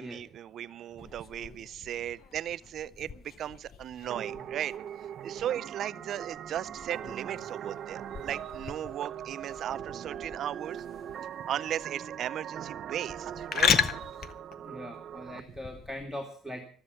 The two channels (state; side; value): normal; both; correlation 0.52